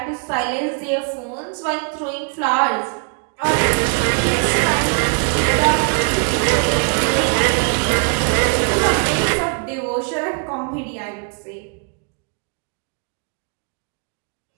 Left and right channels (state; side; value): quieter; left; 39.1 dB